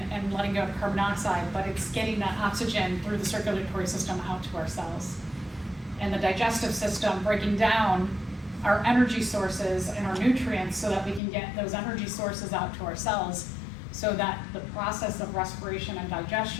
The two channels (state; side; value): drops out; right; at 11.2 s